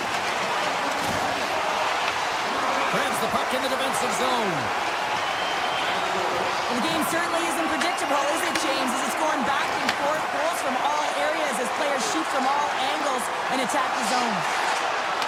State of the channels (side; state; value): both; identical; correlation 1.00